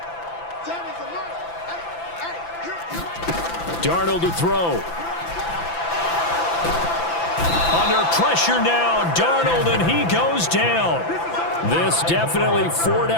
Darnold to throw. Under pressure now, Darnold, and he goes down. This definitely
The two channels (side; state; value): right; late; 5.9 ms